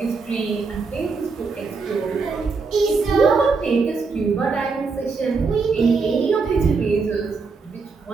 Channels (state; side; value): quieter; left; 4.6 dB